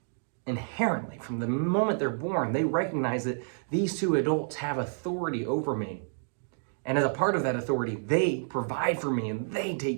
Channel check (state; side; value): silent; left; digital silence